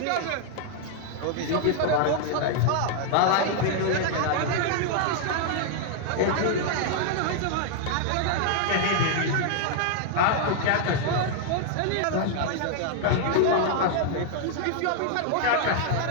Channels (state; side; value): different; both; correlation 0.00